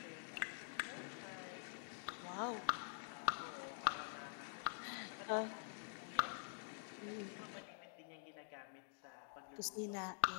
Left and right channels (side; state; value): right; silent; digital silence